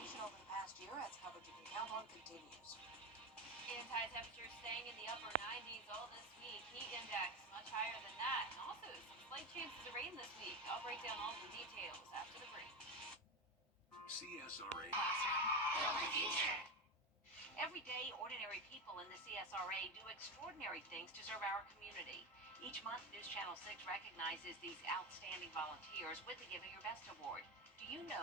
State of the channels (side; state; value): both; normal; correlation 0.18